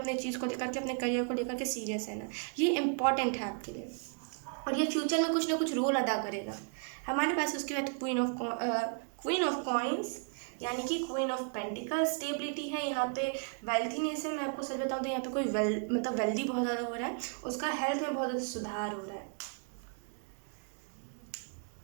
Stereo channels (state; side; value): quieter; left; 39.3 dB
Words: चीज़ को लेकर के, अपने करियर को लेकर के सीरियस है ना। ये इंपॉर्टेंट है आपके लिए, और ये फ्यूचर में कुछ ना कुछ रोल अदा करेगा। हमारे पास उसके बाद क्वीन ऑफ कॉइंस, यानी कि क्वीन ऑफ पेंटिकल। स्टेबिलिटी है यहाँ पे, वेल्थीनेस है। मैं आपको सच बताऊँ तो यहाँ पे कोई मतलब वेल्दी बहुत ज़्यादा हो रहा है, उसका हेल्थ में बहुत ज़्यादा सुधार हो रहा है।